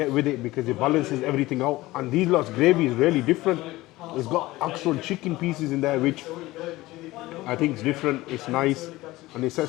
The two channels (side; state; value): right; quieter; 18.6 dB